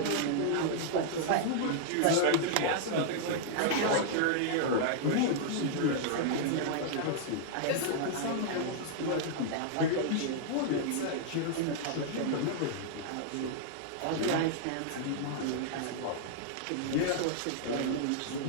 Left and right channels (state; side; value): different; both; correlation -0.01